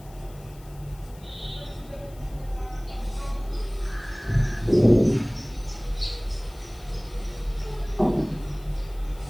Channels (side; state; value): left; noise; hiss, 25 dB below the sound